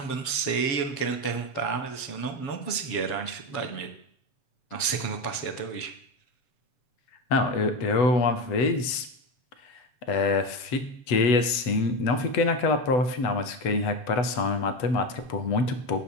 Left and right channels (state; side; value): late; right; 8.0 ms